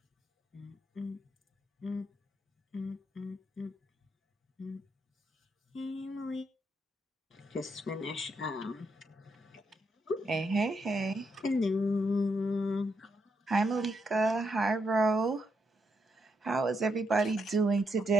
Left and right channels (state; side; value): normal; both; correlation 0.80